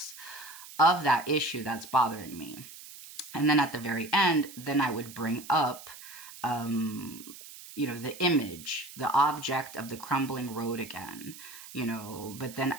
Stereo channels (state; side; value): noise; right; hiss, 16 dB below the sound